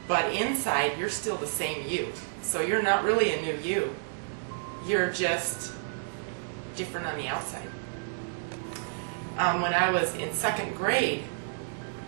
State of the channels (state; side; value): silent; left; digital silence